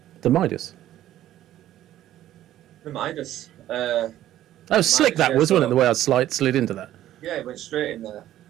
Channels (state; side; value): quieter; left; 13.0 dB